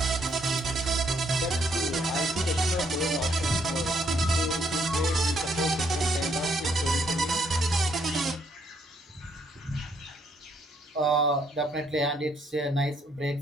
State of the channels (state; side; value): normal; both; correlation 0.71